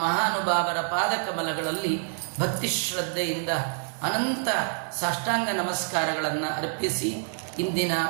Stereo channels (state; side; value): silent; left; digital silence